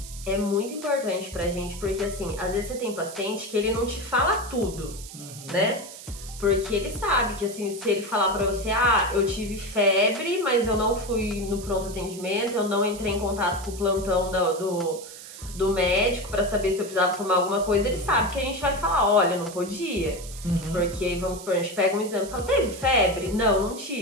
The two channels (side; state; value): right; noise; hiss, 14 dB below the sound